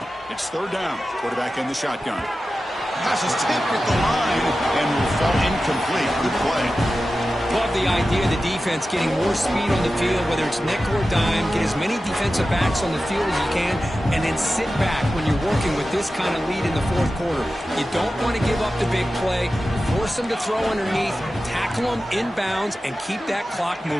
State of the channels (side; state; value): both; normal; correlation 0.94